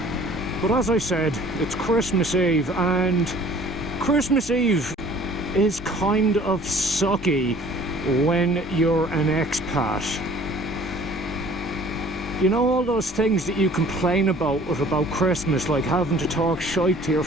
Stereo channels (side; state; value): both; normal; correlation 0.52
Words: But as I said, it's Christmas Eve and Christmas Eve is kind of sucky when you're an expat. You know, all those things that you complain about Christmas, like having to talk shite to your